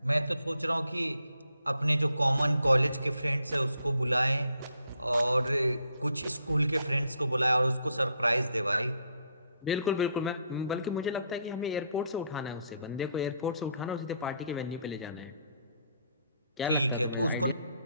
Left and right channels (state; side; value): inverted; both; correlation -0.71